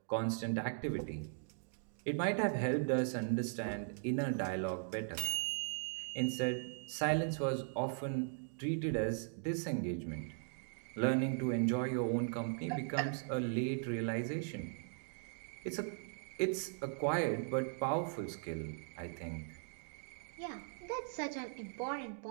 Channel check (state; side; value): silent; left; digital silence